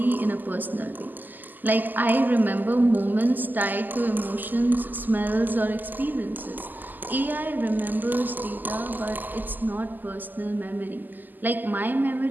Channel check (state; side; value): late; left; 0.087 ms